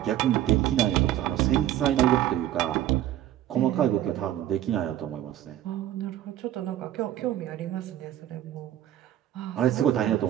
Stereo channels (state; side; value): quieter; left; 12.4 dB